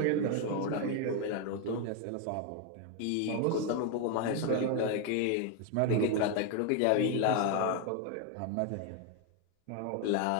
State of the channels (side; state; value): both; different; correlation 0.01